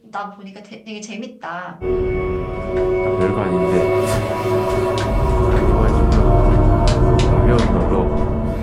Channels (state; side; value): identical; both; correlation 1.00